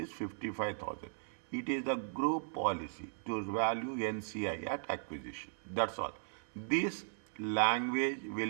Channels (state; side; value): silent; left; digital silence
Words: 55,000. It is the group policy to value NCI at acquisition. That's all. This language